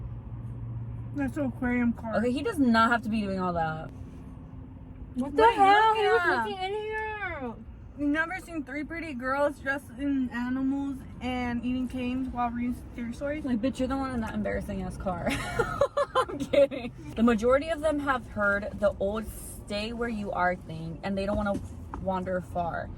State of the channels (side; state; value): both; identical; correlation 1.00